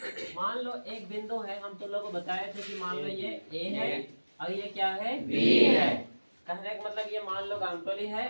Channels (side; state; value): both; inverted; correlation -1.00